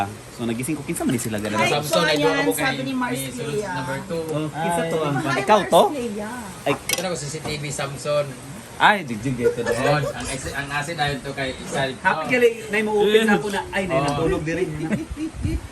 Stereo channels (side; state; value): both; identical; correlation 1.00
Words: So nagising ko kinsa man ni sila Hi, ganun. Samsung, ay doon Choyan, ako kay sabi ni Mars Sulod Clea. number 2. Oh, kinsa to ang Hi, ikaw to? Mars Clea. Ay, Ito na ko CCTV Samsung. ay digjig ito Oh, doon. ang asin ayon to kay isa. Happy gali nay mo open na ako na ay nay Oh. natulog diri.